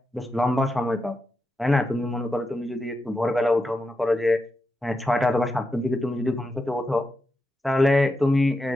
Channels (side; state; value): both; normal; correlation 0.87